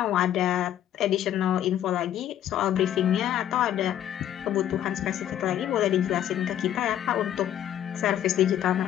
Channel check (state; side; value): quieter; right; 11.2 dB